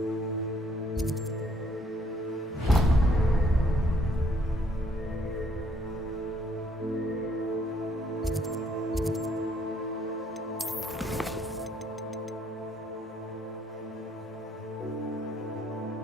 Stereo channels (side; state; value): both; normal; correlation 0.67